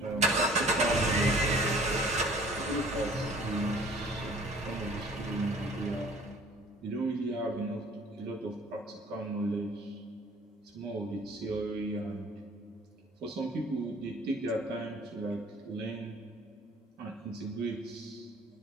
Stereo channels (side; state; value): both; normal; correlation 0.51